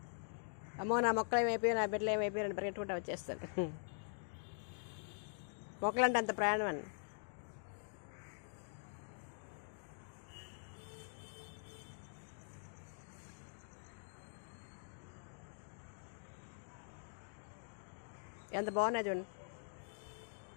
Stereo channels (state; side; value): silent; right; digital silence